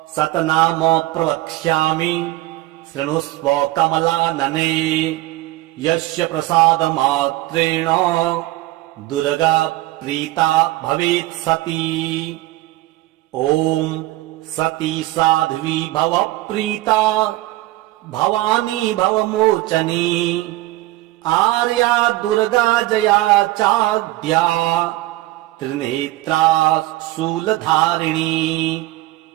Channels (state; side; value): quieter; left; 17.7 dB